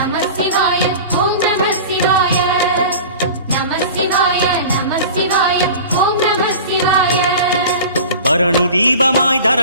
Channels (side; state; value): both; inverted; correlation -0.37